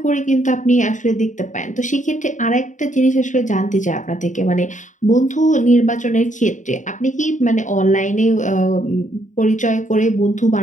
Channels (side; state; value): right; late; 0.36 ms